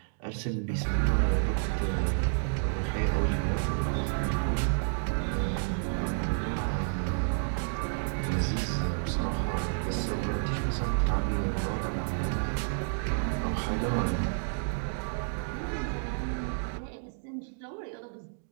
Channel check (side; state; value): left; silent; digital silence